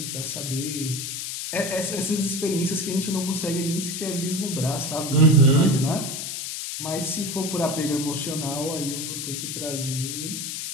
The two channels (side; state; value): left; noise; hiss, 5 dB below the sound